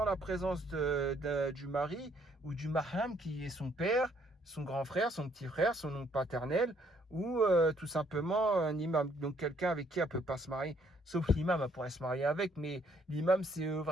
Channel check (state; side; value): normal; both; correlation 0.67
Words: la présence du mari ou du mahram qui est son père, son grand frère, son petit frère, son oncle paternel ou tout simplement un imam. Donc quelqu'un avec qui elle ne peut pas se marier, sauf l'imam, elle pourrait se marier avec, mais l'imam c'est